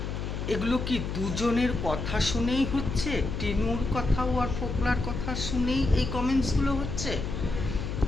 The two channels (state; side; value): noise; left; hum, 4 dB below the sound